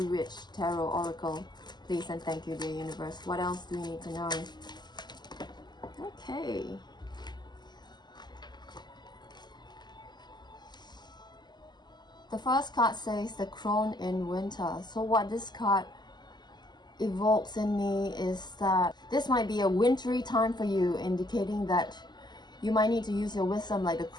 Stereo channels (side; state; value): right; late; 0.21 ms